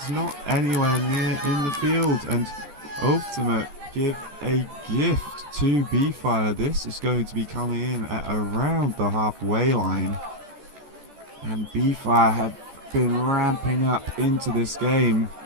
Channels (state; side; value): late; left; 14 ms